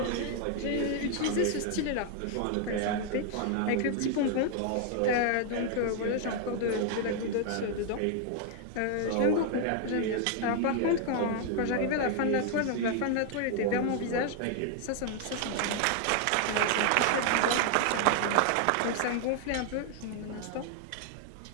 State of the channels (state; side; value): different; both; correlation 0.00